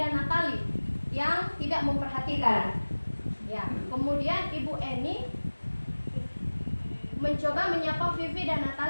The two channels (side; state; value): both; inverted; correlation -1.00